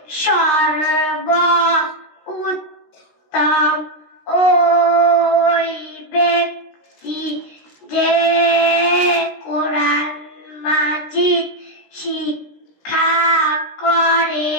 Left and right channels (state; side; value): late; right; 16 ms